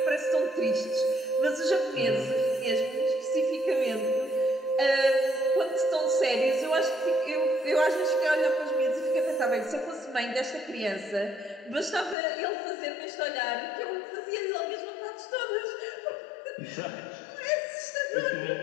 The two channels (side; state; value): right; drops out; at 12.2 s